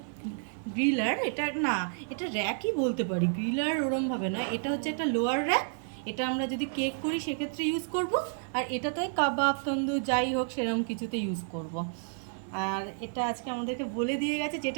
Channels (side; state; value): left; silent; 57 dB below the other